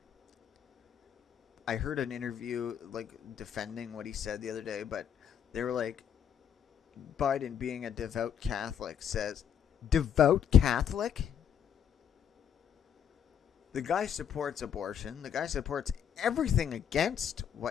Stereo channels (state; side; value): quieter; right; 8.4 dB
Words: I heard an interview like defending what he said the other day, but they were like, Biden, being a devout Catholic, says, devout Catholic? The guy supports abortion. The guy supports everything against